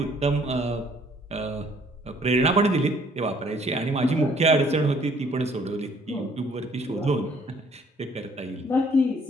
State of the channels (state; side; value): normal; both; correlation 0.61